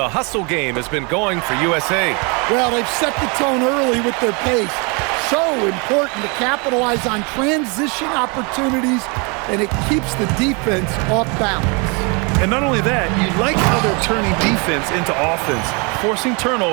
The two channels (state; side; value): quieter; left; 31.5 dB